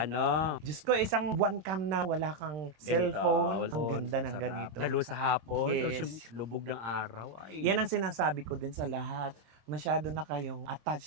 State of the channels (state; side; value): late; left; 26 ms